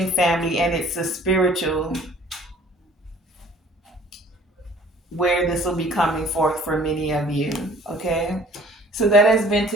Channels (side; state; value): both; normal; correlation 0.52